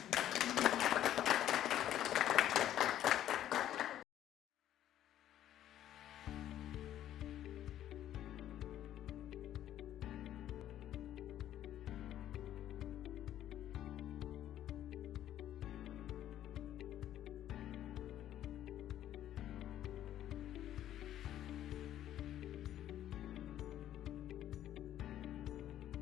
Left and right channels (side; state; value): right; quieter; 11.9 dB